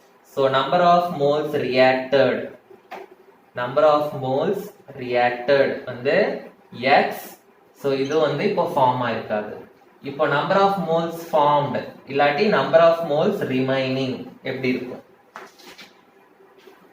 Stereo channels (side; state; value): both; identical; correlation 1.00